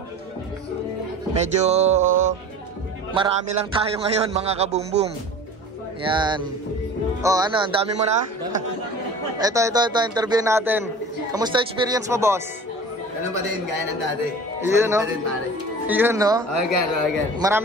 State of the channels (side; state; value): both; normal; correlation 0.40